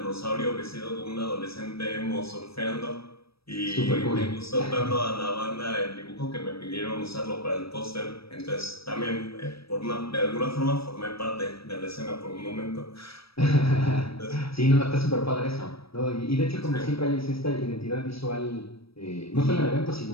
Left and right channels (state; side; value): late; right; 0.76 ms